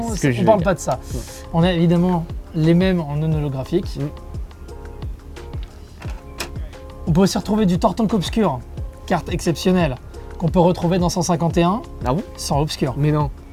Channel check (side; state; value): both; identical; correlation 1.00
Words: ce que je ne parle veux pas dire. de ça. On a évidemment les mêmes en non holographique. On peut aussi retrouver du Tortank Obscur, carte exceptionnelle, qu'on peut retrouver dans 151 Ah bon? sans Obscur. Mais non.